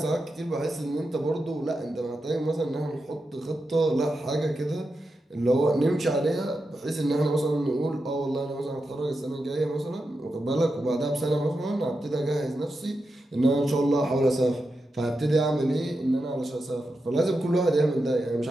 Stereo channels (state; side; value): normal; both; correlation 0.88